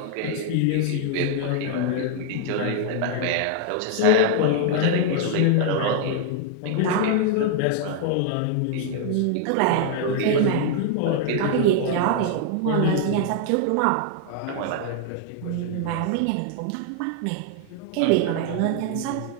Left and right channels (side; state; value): both; different; correlation 0.00